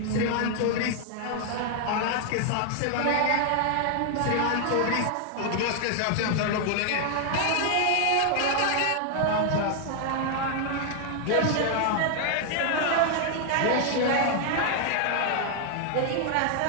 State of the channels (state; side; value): different; both; correlation 0.00